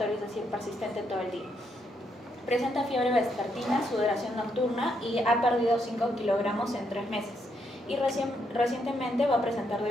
es decir, persistente todo el día. Presenta fiebre vespertina, sudoración nocturna y ha perdido 5 kilogramos en 3 meses. Y recientemente va a presentar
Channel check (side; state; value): both; normal; correlation 0.77